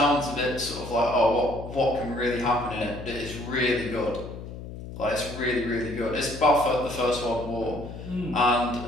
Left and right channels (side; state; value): left; noise; hum, 11 dB below the sound